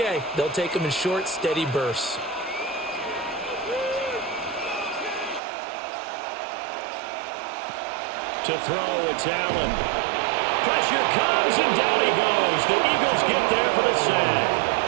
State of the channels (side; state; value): left; drops out; at 5.4 s